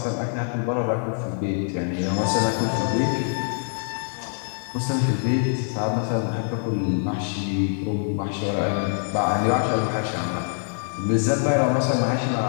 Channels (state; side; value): silent; right; digital silence